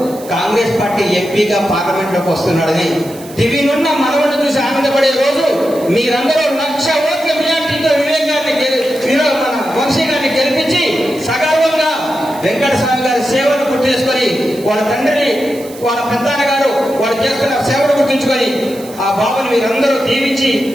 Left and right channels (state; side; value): noise; right; hiss, 19 dB below the sound